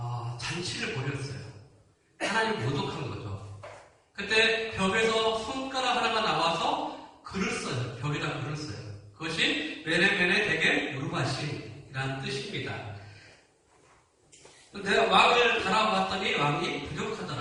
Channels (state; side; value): identical; both; correlation 1.00